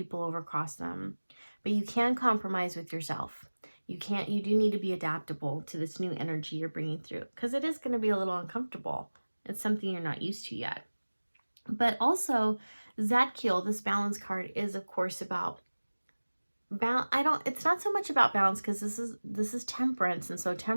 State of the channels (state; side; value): inverted; both; correlation -1.00